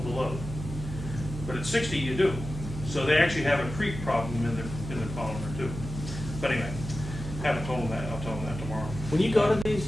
the load. But at 60, you do. So they actually have a creep problem in the polymer too. But anyway, haven't told them that. I'll tell them that tomorrow. When you go to these,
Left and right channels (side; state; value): right; noise; hum, 8 dB below the sound